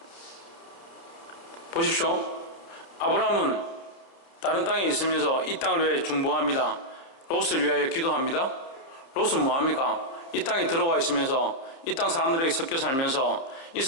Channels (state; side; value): late; right; 30 ms